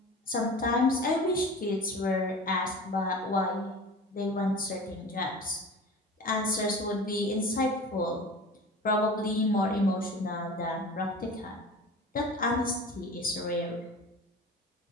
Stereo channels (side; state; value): both; normal; correlation 0.37